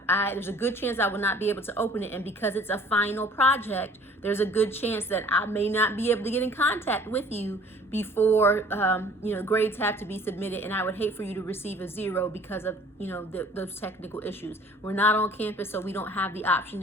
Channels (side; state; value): both; normal; correlation 0.52